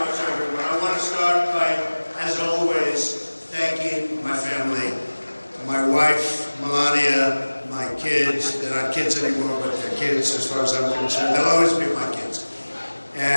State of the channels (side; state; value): both; inverted; correlation -1.00